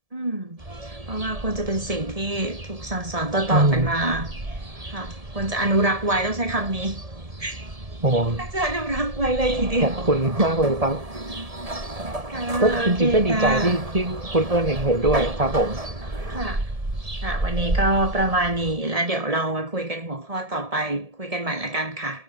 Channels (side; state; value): left; late; 1.7 ms